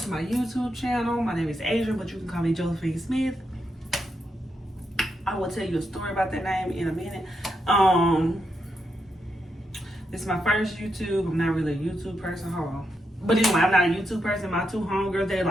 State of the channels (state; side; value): normal; both; correlation 0.83